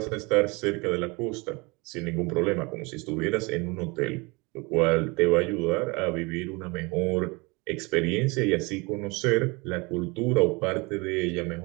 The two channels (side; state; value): left; quieter; 26.7 dB